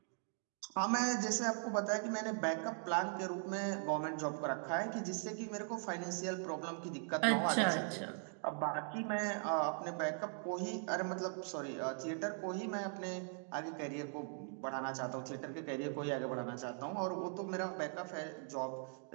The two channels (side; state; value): left; silent; 51 dB below the other